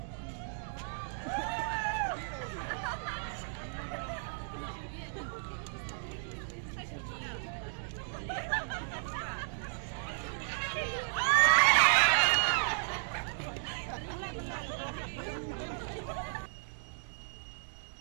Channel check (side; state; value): left; silent; digital silence